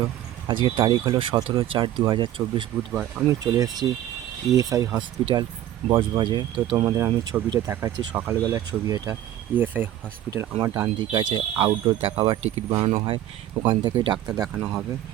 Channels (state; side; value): quieter; left; 12.5 dB